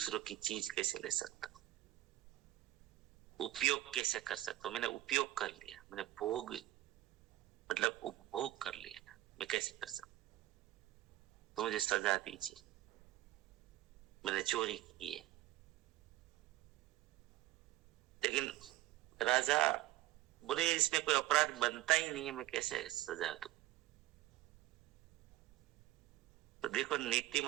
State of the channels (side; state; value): left; quieter; 16.2 dB